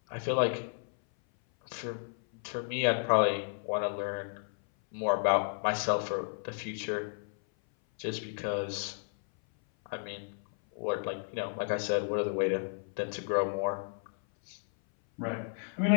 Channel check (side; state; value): right; silent; 56 dB below the other